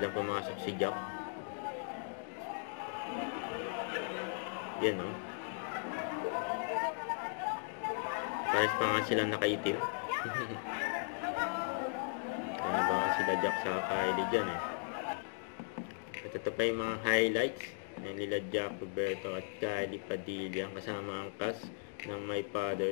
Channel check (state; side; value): silent; right; digital silence